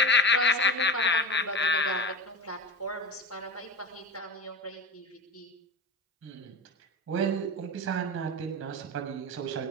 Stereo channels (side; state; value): both; normal; correlation 0.27